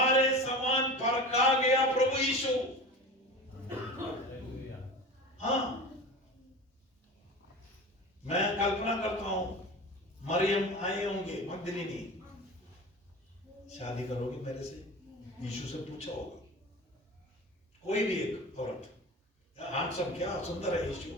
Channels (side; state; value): both; normal; correlation 0.33